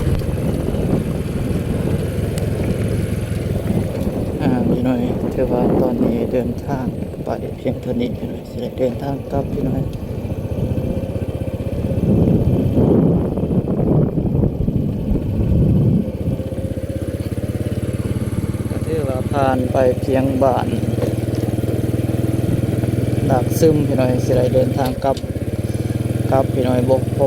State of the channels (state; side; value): identical; both; correlation 1.00